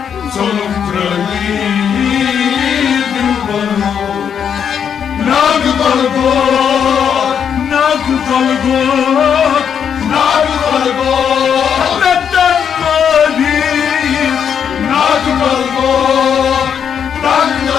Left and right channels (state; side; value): quieter; right; 7.8 dB